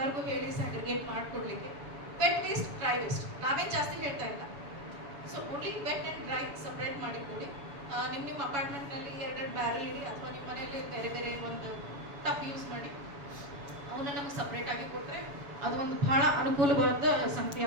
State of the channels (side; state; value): left; late; 7.0 ms